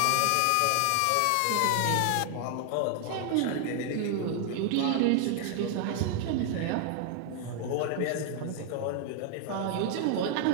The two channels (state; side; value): different; both; correlation 0.00